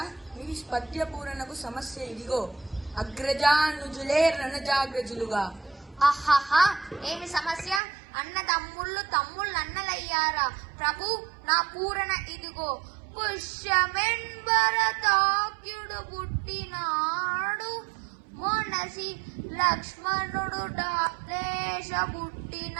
మీ పద్య పూరణకు సమస్య ఇదిగో: అగ్రజానుజులే రణజాగ్రజులుగా. ఆహాహా, ఏమి సమస్య? అన్న తమ్ముళ్ళు అన్నలయ్యారా? ప్రభు, నా పూరణ ఇదిగో: పుష్యమెంబరతాక్యుడు పుట్టినాడు, మొనసి లక్ష్మణుడు డాలేశ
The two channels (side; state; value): left; drops out; at 7.8 s